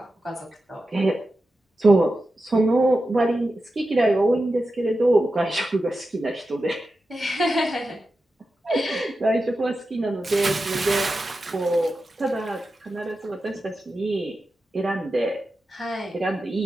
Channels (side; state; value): both; normal; correlation 0.91